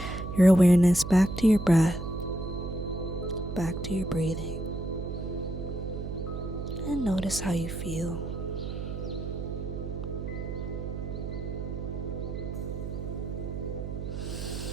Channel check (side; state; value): right; noise; hum, 5 dB below the sound